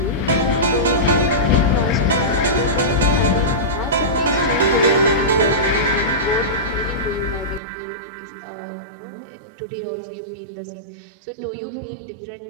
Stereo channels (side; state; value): left; drops out; at 7.6 s